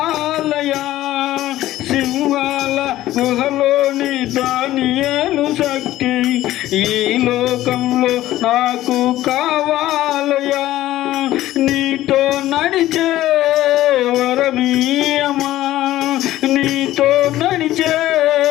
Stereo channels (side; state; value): right; quieter; 14.8 dB